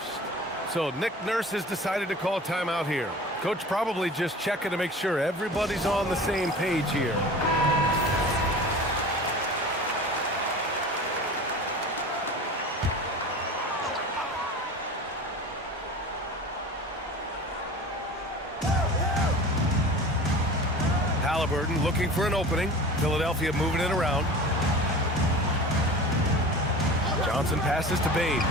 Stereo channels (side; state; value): both; normal; correlation 0.37